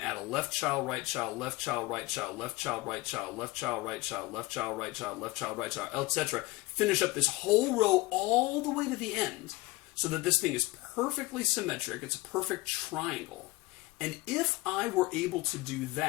a left child, right child, left child, right child, left child, right child, left child, right child, left child, right child, left child, right child, etc. Finish up this whole row all the way to the end so that this thing is perfectly symmetric. It's a perfect triangle. And if I were able to do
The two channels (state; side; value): quieter; right; 21.4 dB